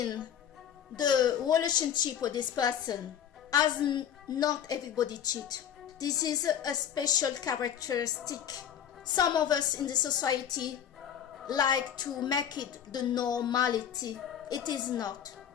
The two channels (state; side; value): quieter; right; 9.3 dB